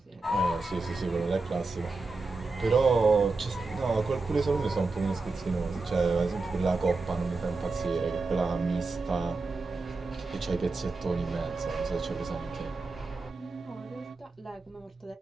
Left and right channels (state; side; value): quieter; left; 3.7 dB